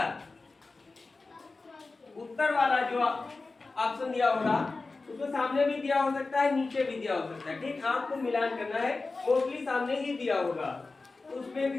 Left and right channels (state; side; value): quieter; right; 3.7 dB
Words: उत्तर वाला जो ऑप्शन दिया होगा उसमें सामने भी दिया हो सकता है, नीचे भी दिया हो सकता है। ठीक, आपको मिलान करना है। मोस्टली सामने ही दिया होगा, उसमें